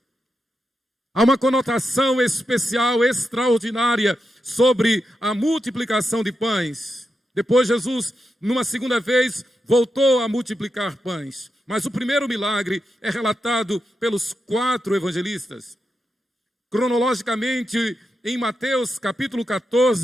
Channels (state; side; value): normal; both; correlation 0.87